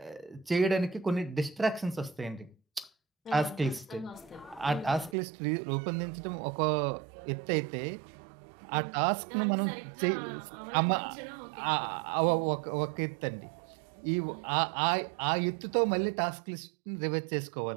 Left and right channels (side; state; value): left; drops out; at 5.2 s